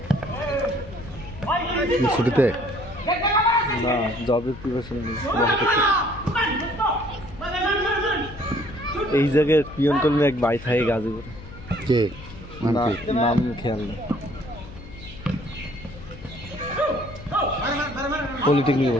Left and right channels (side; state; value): left; noise; hum, 16 dB below the sound